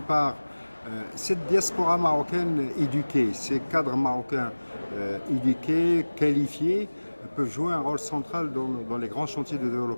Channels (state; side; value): inverted; both; correlation -1.00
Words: part, cette diaspora marocaine éduquée, ces cadres marocains éduqués, qualifiés, peuvent jouer un rôle central dans les grands chantiers de